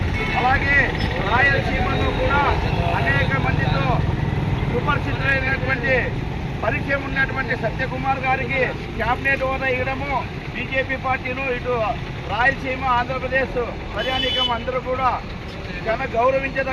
అలాగే రాయలసీమలో కూడా అనేక మందితో సుపరిచితులైనటువంటి పరిచయం ఉన్నటువంటి సత్యకుమార్ గారికి క్యాబినెట్ హోదా ఇవ్వడము బీజేపీ పార్టీలు ఇటు రాయలసీమ, ఆంధ్రప్రదేశ్ ప్రజానీకం అందరూ కూడా చాలా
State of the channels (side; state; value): both; identical; correlation 1.00